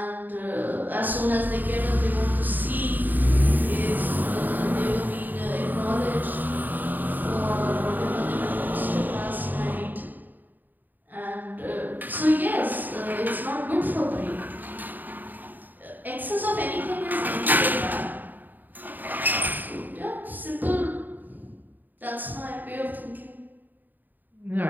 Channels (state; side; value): late; left; 0.088 ms